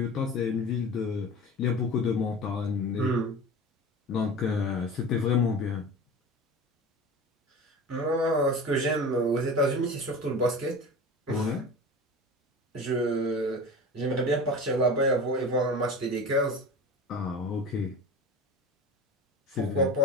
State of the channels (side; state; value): both; normal; correlation 0.34